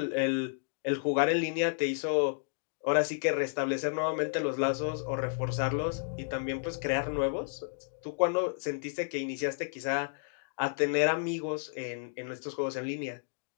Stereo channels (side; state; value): right; silent; digital silence